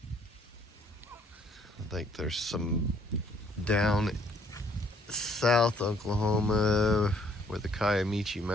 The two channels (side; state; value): both; normal; correlation 0.64